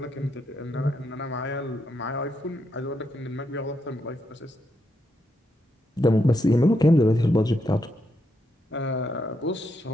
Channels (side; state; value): both; normal; correlation 0.80